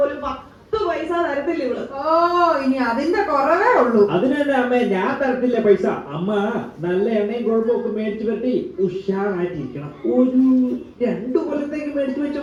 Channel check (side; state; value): both; identical; correlation 1.00